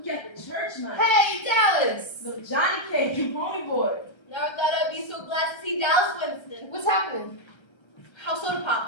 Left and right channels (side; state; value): right; late; 1.3 ms